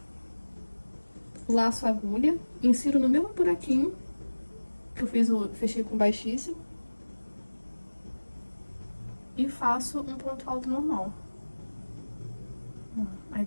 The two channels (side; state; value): both; inverted; correlation -1.00